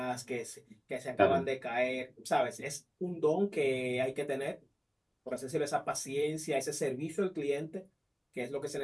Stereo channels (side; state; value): both; identical; correlation 1.00